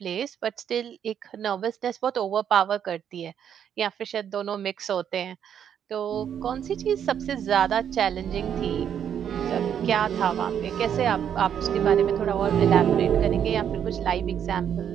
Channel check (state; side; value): quieter; left; 8.9 dB